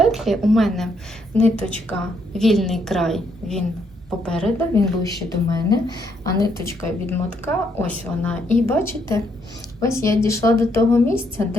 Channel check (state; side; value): normal; both; correlation 0.73